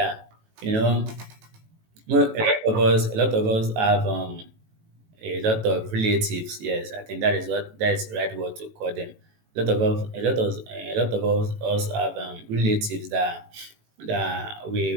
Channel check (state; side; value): late; left; 18 ms